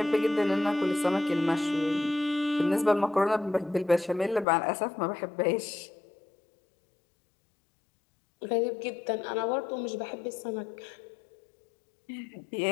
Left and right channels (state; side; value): drops out; right; at 4.5 s